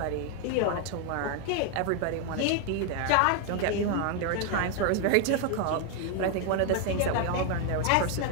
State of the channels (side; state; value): both; different; correlation 0.01